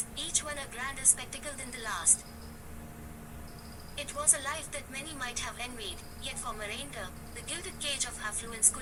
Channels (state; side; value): identical; both; correlation 1.00